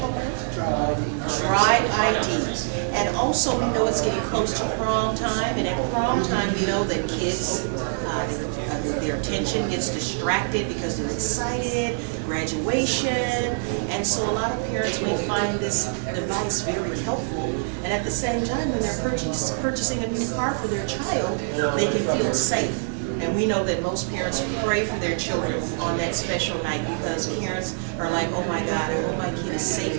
Drive ID. And also we know it's getting close to prom time. And at prom time we know that kids, their attention gets distracted because they're excited, graduation, and so a lot of parents may find this device very helpful, and at the same time when they're purchasing a new car for their child, they can feel safe. And we know that most parents pray for their children on that special night because parents are like, oh my God, I hope my kid is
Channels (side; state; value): left; silent; 62 dB below the other